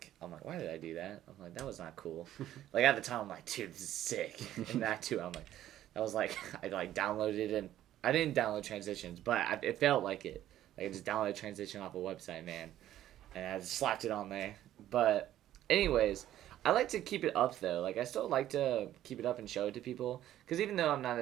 why did I do that? I'm like, that was not cool. Like at the time, I'm like, dude, this is sick. And that too, I'm like, that was like, I like downloaded it and I didn't download transitions, but it felt like it. Like I just downloaded transition off a website, man, and I just slapped it on there. But anyways, I like to keep it up though. Like I still like to keep it up and show it to people, because even though I'm not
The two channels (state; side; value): quieter; left; 12.6 dB